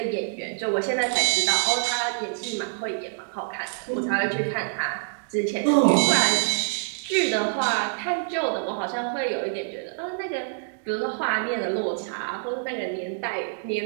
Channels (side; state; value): left; silent; digital silence